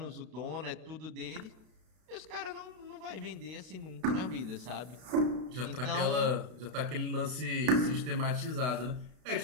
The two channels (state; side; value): late; left; 32 ms